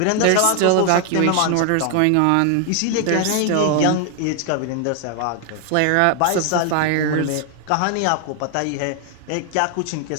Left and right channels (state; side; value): different; both; correlation 0.00